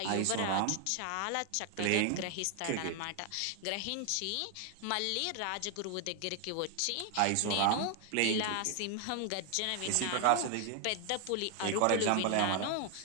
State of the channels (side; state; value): both; different; correlation 0.00